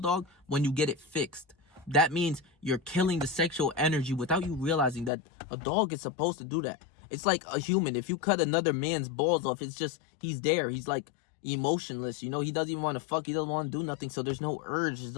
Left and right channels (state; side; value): drops out; right; at 5.1 s